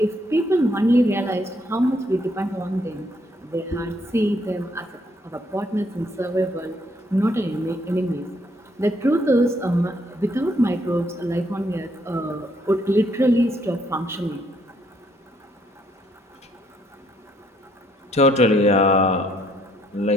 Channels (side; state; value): both; normal; correlation 0.69